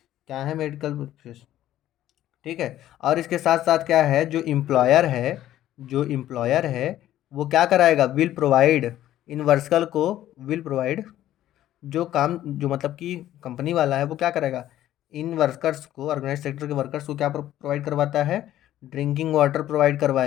क्या है मेडिकल बेनिफिट्स, ठीक है। और इसके साथ साथ क्या है, जो एम्प्लॉयर है वो क्या कराएगा, विल प्रोवाइड इन वर्कर्स को, विल प्रोवाइड, जो काम जो मतलब कि कंपनी वाला है वो क्या करेगा, इन वर्कर्स को, ऑर्गेनाइज सेक्टर के वर्कर्स को क्या प्रोवाइड करवाता है, ड्रिंकिंग वाटर प्रोवाइड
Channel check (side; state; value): right; quieter; 13.0 dB